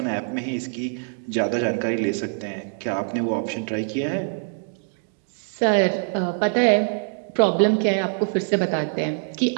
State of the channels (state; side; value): silent; left; 63 dB below the other